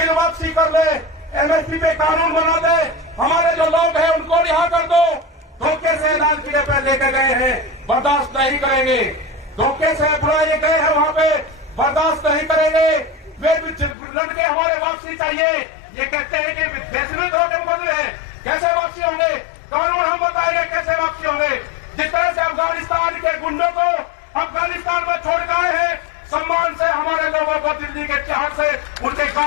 वापसी कर ले, एमएसपी पे कानून बना दे। हमारे जो लोग हैं उनको रिहा कर दो। धोखे से लाल किले पे लेके गए हैं, बर्दाश्त नहीं करेंगे। धोखे से बुलाए गए हैं वहां पे, बर्दाश्त नहीं करेंगे। वे लड़के हमारे वापसी चाहिए। ये कहते हैं कि देश में धोखे बदले हैं, कैसे वापसी होंगे? कानून हम बताएंगे कैसे वापसी होंगे। जिस तरह से अफगानिस्तान के गुंडों को अफगानिस्तान में छोड़ के आए हैं, सम्मान से हमारे लोगों को दिल्ली के तिहाड़ से उनके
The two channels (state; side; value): drops out; right; at 14.0 s